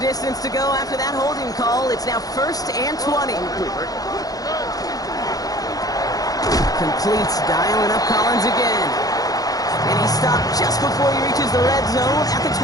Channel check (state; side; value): late; right; 0.18 ms